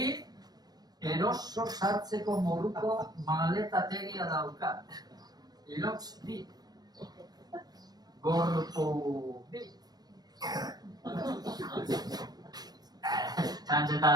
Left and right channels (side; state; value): left; late; 0.19 ms